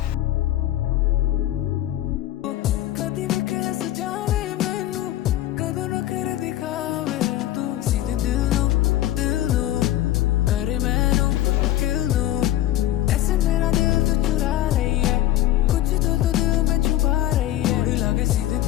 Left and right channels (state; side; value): quieter; right; 14.0 dB